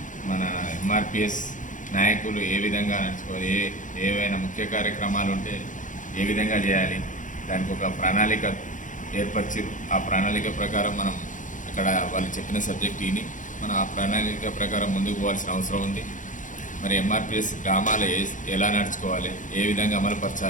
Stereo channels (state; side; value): late; right; 0.37 ms